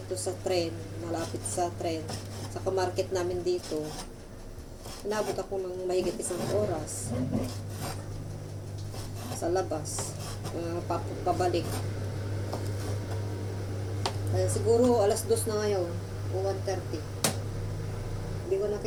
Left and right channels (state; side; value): identical; both; correlation 1.00